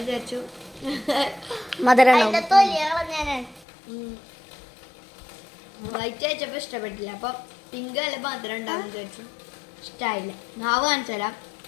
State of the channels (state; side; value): drops out; right; at 3.7 s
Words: വിചാരിച്ചു വൈറ്റ് അയച്ചപ്പോ ഇഷ്ടപ്പെട്ടില്ല. അപ്പൊ പിങ്ക് അല്ല മധുരം ഉണ്ടാവും വിചാരിച്ചു. ഇഷ്ടായില്ല. നാവ് കാണിച്ചാലാ